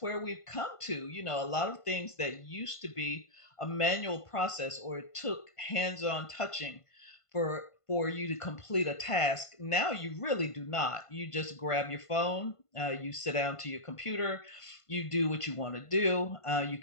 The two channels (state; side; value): late; right; 1.5 ms